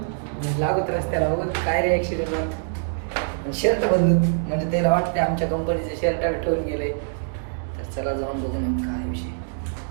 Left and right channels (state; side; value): silent; left; digital silence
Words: लागत रस्त्याला. बघून काय रिॲक्शन येतात. शर्ट बदलून, म्हणजे त्याला वाटते आमच्या कंपनीचे शर्ट ठेवून गेले. तर चला जाऊन बघून काय विषय.